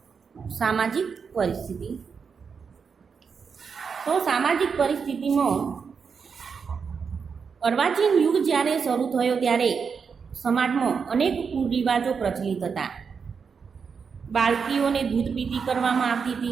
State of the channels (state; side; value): quieter; left; 5.9 dB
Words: સામાજિક પરિસ્થિતિ. તો સામાજિક પરિસ્થિતિમાં અર્વાચીન યુગ જ્યારે શરૂ થયો ત્યારે સમાજમાં અનેક કુરિવાજો પ્રચલિત હતા. બાળકીઓને દૂધ પીતી કરવામાં આવતી